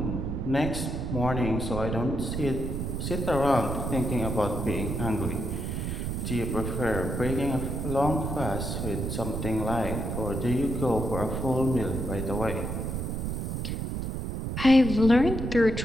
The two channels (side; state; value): right; noise; rumble, 2 dB below the sound